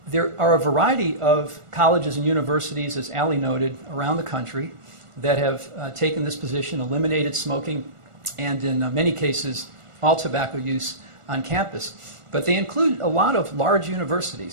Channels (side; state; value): left; late; 1.4 ms